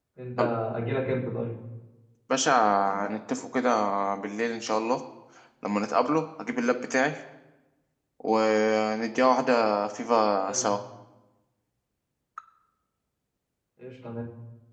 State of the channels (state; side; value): identical; both; correlation 1.00